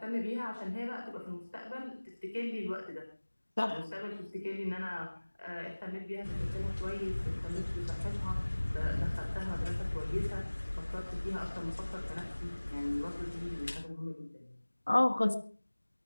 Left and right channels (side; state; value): both; inverted; correlation -1.00